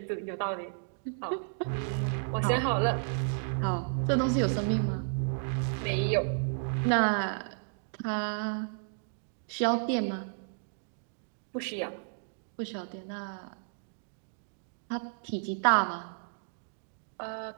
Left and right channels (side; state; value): left; silent; digital silence